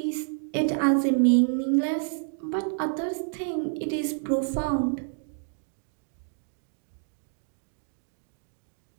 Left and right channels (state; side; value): silent; left; digital silence